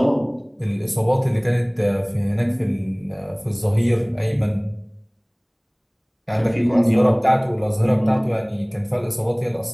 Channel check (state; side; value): identical; both; correlation 1.00